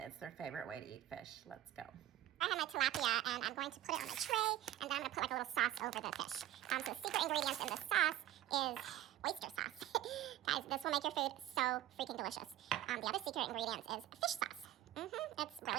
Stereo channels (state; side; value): quieter; left; 13.5 dB